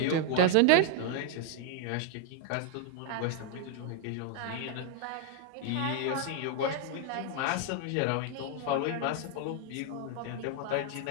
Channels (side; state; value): both; different; correlation 0.01